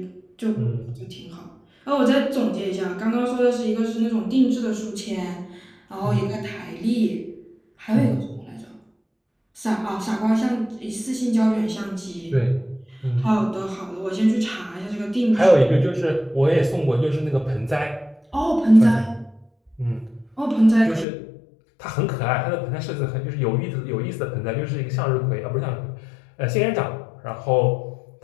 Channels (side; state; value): right; drops out; at 21.1 s